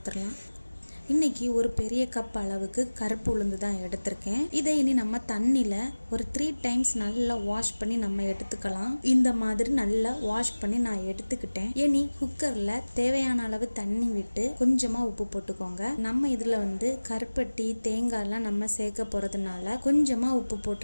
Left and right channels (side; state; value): both; inverted; correlation -1.00